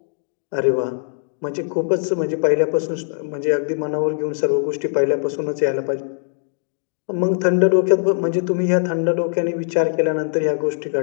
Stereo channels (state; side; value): silent; right; digital silence